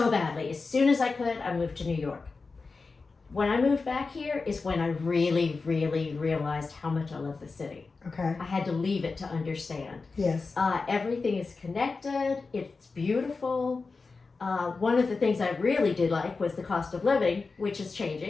badly. As soon as I could, I moved to New York. When I moved back here is when I really, really realized how much I love the city. Okay. I had to leave it to understand. Yes. Everything is connected. It's beautiful. One of the things I really did like was the cost of living, which is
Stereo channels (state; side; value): quieter; right; 4.2 dB